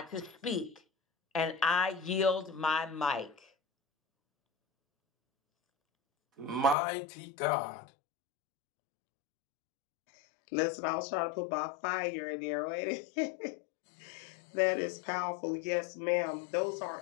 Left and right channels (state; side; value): drops out; right; at 6.8 s